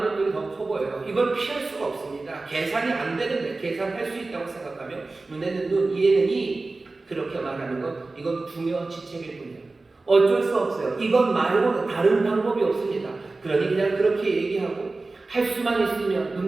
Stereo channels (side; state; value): left; quieter; 3.4 dB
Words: 떡이 더 커 보여요. 이걸 피할 수가 없습니다. 계산이 안 되는데 계산할 수 있다고 생각하면 눈에는 눈, 이에는 이 그렇게 말하는 것, 이건 부녀지책일 뿐이에요. 어쩔 수 없어요. 이것 말고는 다른 방법이 없습니다. 그러니 그냥 그렇게 얘기하고 할 수만 있으면